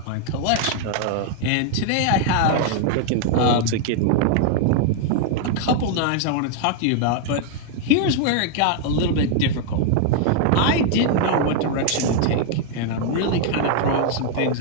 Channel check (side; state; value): both; different; correlation 0.00